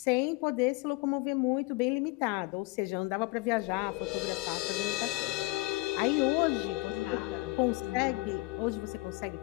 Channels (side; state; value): right; quieter; 22.6 dB